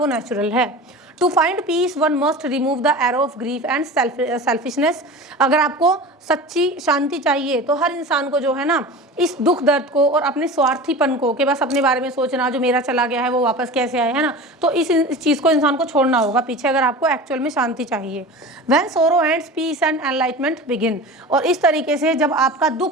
नेचुरल है। To find peace one must remove the arrow of grief and selfishness. अगर आपको सच्ची शांति चाहिए तो हर इंसान को जो है ना इस दुख दर्द को और अपने स्वार्थीपन को, कि बस अपने बारे में सोचना, जो मेरा चला गया है वो वापस कैसे आए, है ना, तो इस चीज़ को इंसान को छोड़ना होगा पीछे, अगर आपको एक्चुअल में शांति चाहिए। When sorrow ends peace and enlightenment begin. और इस तरीके से जब आपका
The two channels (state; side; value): normal; both; correlation 0.34